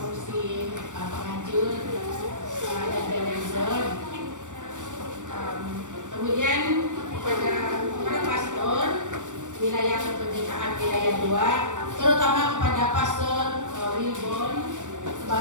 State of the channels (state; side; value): late; left; 0.86 ms